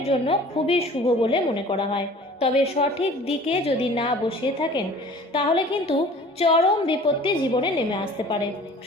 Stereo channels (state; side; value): normal; both; correlation 0.47